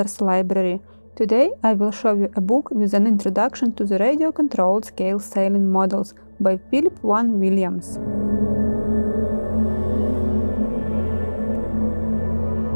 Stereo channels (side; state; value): both; inverted; correlation -1.00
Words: Library. Today I will show you a book with an introduction to the radio-controlled scale sailing models by Phillip Vaughan Williams.